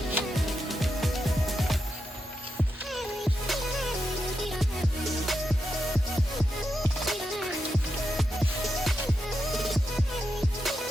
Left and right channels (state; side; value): normal; both; correlation 0.86